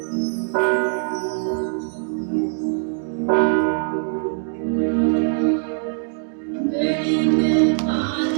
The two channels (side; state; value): left; silent; digital silence